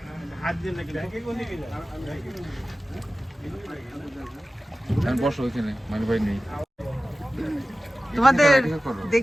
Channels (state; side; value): normal; both; correlation 0.96